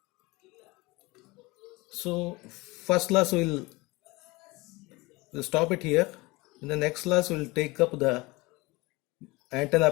So first class we'll stop it here. In the next class we'll take up the antenna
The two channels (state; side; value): quieter; right; 23.2 dB